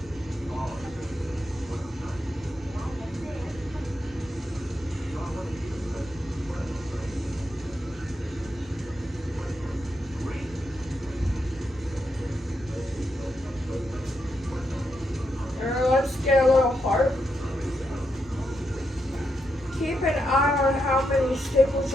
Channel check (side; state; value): left; noise; rumble, 25 dB below the sound